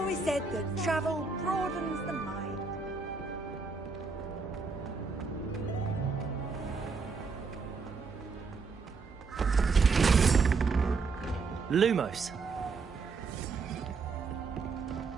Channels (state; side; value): quieter; left; 4.6 dB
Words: said that travel broadens the mind. Lumos.